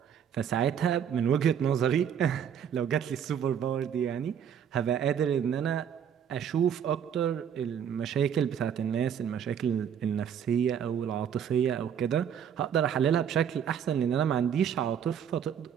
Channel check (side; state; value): left; quieter; 8.5 dB